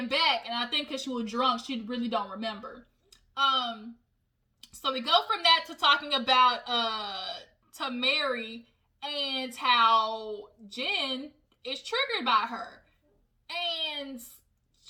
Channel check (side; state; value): both; identical; correlation 1.00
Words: back. And I think because she was drunk, she really don't remember. So we go from that to talking about to Mary and how Jen is triggered by her. And